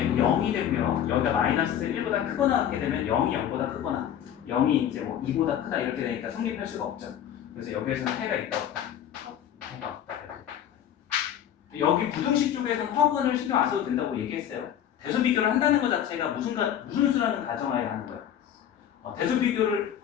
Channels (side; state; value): right; quieter; 10.0 dB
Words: 0이 되고요. 여기가 마이너스 1보다 크거나 같게 되면 0이 0보다 크거나 0이 이제 뭐 2보다 크다 이렇게 되니까 성립할 수가 없죠. 그래서 여기에서는 해가 있다 없다. 해가 없다. 여기 부등식 쪽에서는 허근을 신경 안 써도 된다고 얘기했어요. 대수 비교를 한다는 것 자체가 무슨 수라는 가정하에 하는 거예요. 대수 비교를